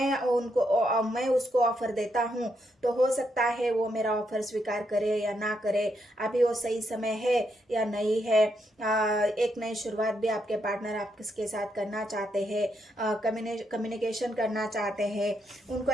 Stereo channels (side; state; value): both; normal; correlation 0.79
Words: उसको ऑफर देता हूँ तो हो सकता है वो मेरा ऑफर स्वीकार करे या ना करे। अभी वो सही समय है या नहीं है। एक नई शुरुआत भी आपके पार्टनर आपके साथ करना चाहते हैं, कम्युनिकेशन करना चाहते हैं। उनको